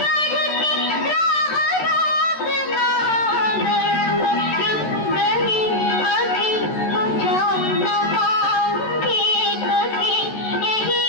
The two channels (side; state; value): right; late; 13 ms